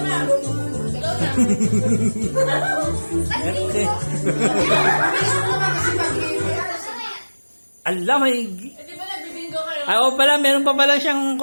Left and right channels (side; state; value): both; inverted; correlation -1.00